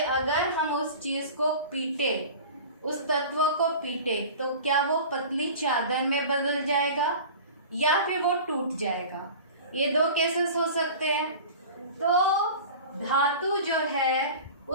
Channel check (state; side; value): inverted; both; correlation -0.37